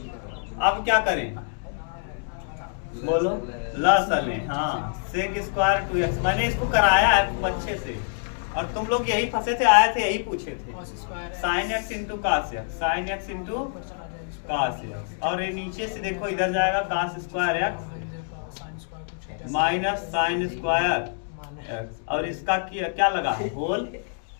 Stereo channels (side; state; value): right; silent; digital silence